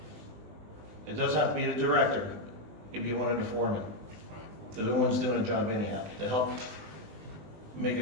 It doesn't have to be the director. It could be one of the foremen. They're the ones doing the job anyhow, to help make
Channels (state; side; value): late; left; 20 ms